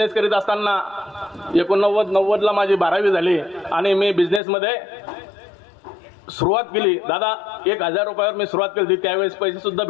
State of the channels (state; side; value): drops out; right; at 4.4 s